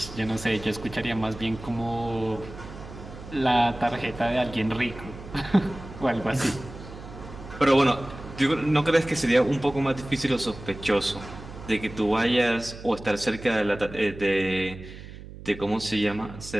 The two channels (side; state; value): right; noise; hum, 14 dB below the sound